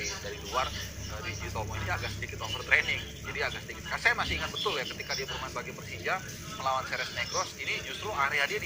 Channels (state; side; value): identical; both; correlation 1.00